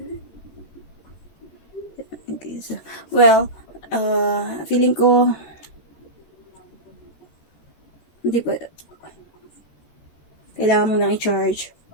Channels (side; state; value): right; late; 13 ms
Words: okay, so, well, feeling ko hindi pa kailangan mo nang i-charge